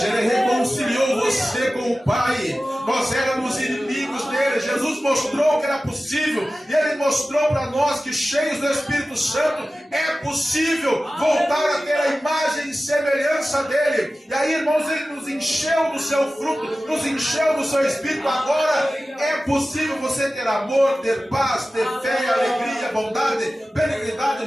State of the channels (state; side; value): normal; both; correlation 0.95